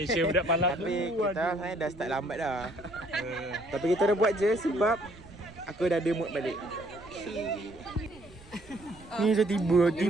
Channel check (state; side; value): noise; right; rumble, 22 dB below the sound